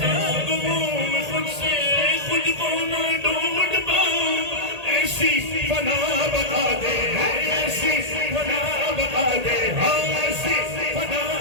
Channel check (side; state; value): left; late; 1.8 ms